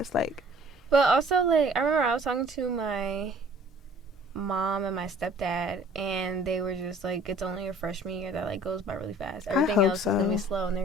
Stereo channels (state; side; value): normal; both; correlation 0.52